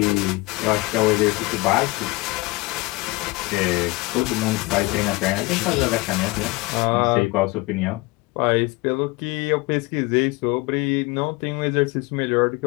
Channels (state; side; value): quieter; right; 23.1 dB